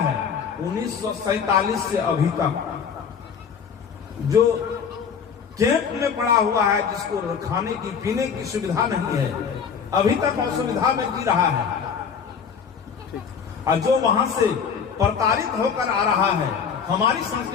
1947 से अभी तक, जो कैंप में पड़ा हुआ है, जिसको खाने की पीने की सुविधा नहीं है, अभी तक असुविधा में जी रहा है, और जो वहां से प्रताड़ित होकर आ रहा है हमारी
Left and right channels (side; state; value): right; quieter; 6.7 dB